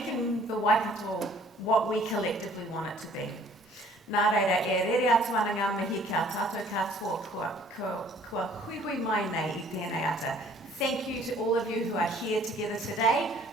the Waikato what we collectively want it to be. Nā reira, e rere atu ana ngā mihi ka tātou katoa kua hui mai nei I tēnei ata. Thank you to all of you who are here together today,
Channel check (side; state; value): both; normal; correlation 0.56